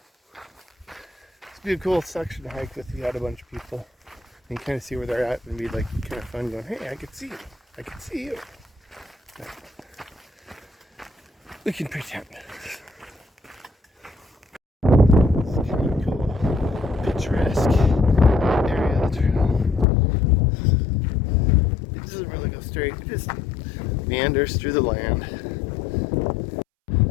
would be a cool section to hike with. You had a bunch of people and kind of see where they're at, and be like kind of fun going, hey, I can see you. I can see you. But we can pretend. It's kind of cool, picturesque area of the trail. It doesn't really go straight. It just meanders through the land.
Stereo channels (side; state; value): right; drops out; at 19.9 s